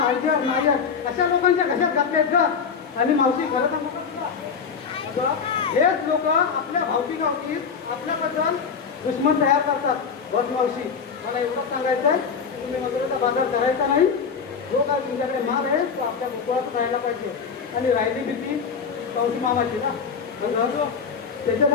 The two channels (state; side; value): quieter; right; 6.1 dB